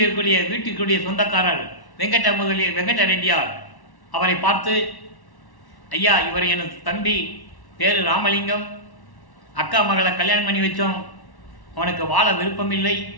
இருக்கக்கூடிய வீட்டிற்குரிய சொந்தக்காரர் வெங்கட ரெட்டியார் அவரை பார்த்து, ஐயா, இவர் எனது தம்பி, பேரு ராமலிங்கம், அக்கா மகளை கல்யாணம் பண்ணி வச்சோம், அவனுக்கு வாழ விருப்பமில்லை,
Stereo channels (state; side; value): late; right; 1.1 ms